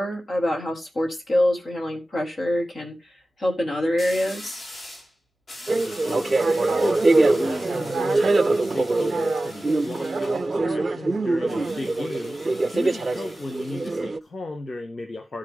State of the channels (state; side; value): normal; both; correlation 0.95